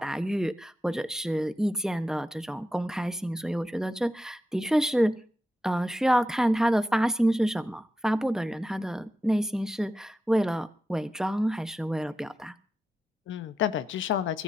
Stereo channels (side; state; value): both; normal; correlation 0.90